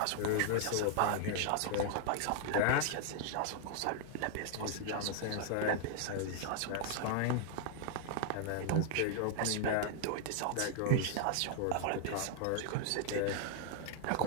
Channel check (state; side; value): different; both; correlation 0.00